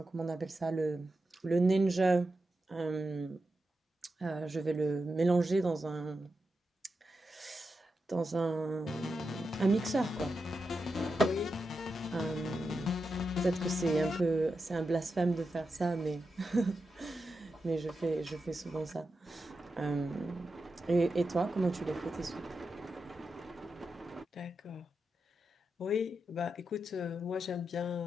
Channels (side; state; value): both; normal; correlation 0.89